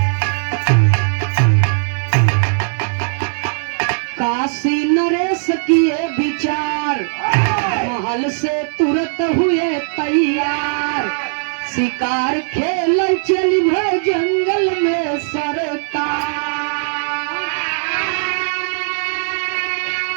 काशी नरेश किए विचार महल से तुरंत हुए तैयार शिकार खेल चली भय जंगल में सरकार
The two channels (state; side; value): silent; left; digital silence